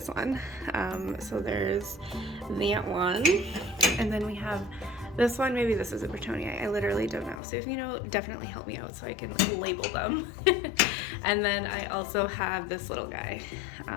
one. So there's that one. And then we have this one. Maybe this is a Bretonii. I literally don't know. So if you know, definitely help me out so I can label them. And then I also have this little guy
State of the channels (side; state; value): right; drops out; at 7.4 s